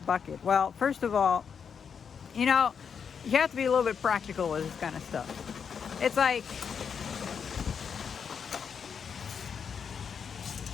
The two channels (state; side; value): quieter; right; 6.8 dB